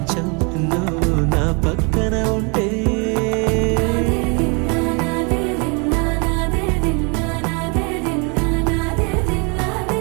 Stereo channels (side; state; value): left; quieter; 32.6 dB